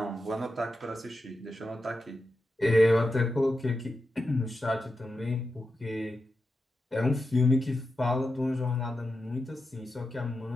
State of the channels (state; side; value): normal; both; correlation 0.89